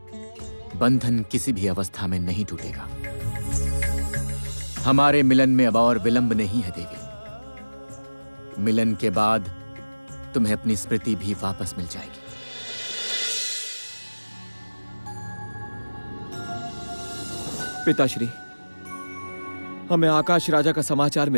बंधन किसी भी अवस्था में नहीं टूटेगा। हमारे मिलन में अब और विलंब नहीं है देवी। मिलन के बाद तुम्हें अपनी स्मृति भी वापस मिल जाएगी। पिताश्री, हमें आकाश राजा का समाचार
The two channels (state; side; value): inverted; both; correlation -1.00